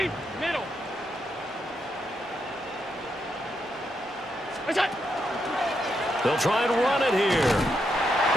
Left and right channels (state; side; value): normal; both; correlation 0.81